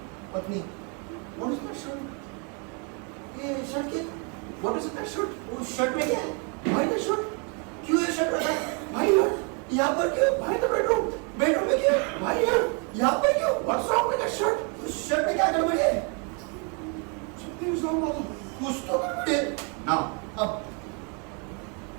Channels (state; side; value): quieter; left; 36.0 dB